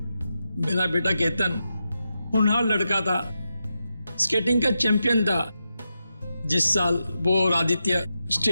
मेरा बेटा केतन होनहार लड़का था, स्केटिंग का चैंपियन था। जिस साल वो और आदित्य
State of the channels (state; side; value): inverted; both; correlation -0.88